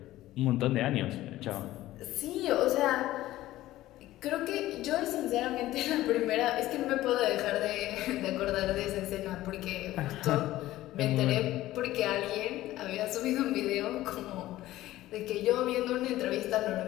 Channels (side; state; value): right; quieter; 15.6 dB